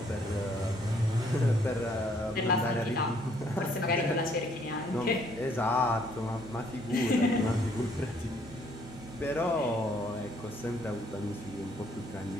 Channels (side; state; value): both; normal; correlation 0.65